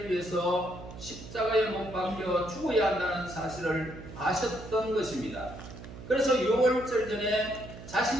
위해서 십자가에 못 박혀 죽어야 한다는 사실을 아셨던 것입니다. 그래서 6월절 전에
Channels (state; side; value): noise; right; hum, 14 dB below the sound